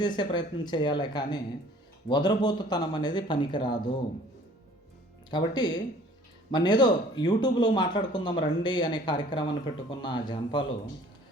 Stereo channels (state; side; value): normal; both; correlation 0.53